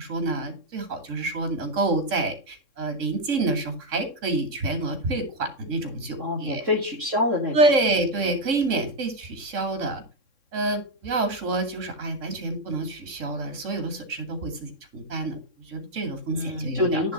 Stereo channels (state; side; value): late; left; 3.6 ms